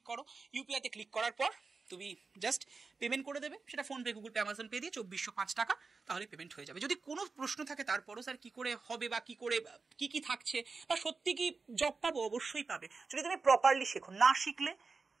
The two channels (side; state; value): left; quieter; 4.4 dB